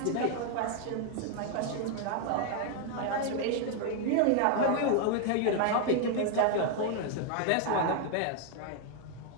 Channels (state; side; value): different; both; correlation 0.00